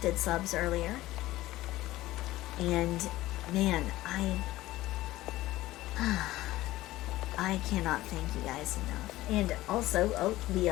subs earlier, and man, I cannot thank you guys enough. And also, we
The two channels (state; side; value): quieter; right; 16.7 dB